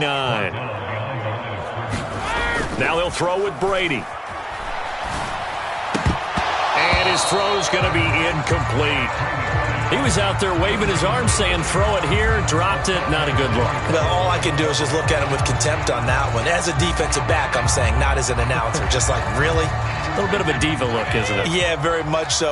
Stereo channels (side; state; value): both; identical; correlation 1.00